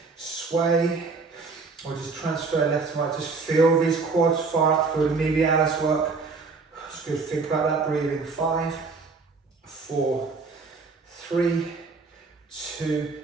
sway, or just transfer left to right. Just feel these quads far up, feel the medialis work. It's good, think about that breathing. 5, 4, 3, 2,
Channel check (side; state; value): left; quieter; 4.3 dB